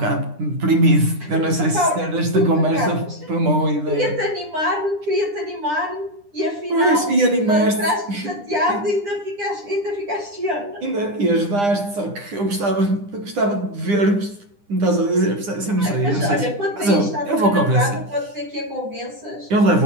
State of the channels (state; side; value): late; left; 9.9 ms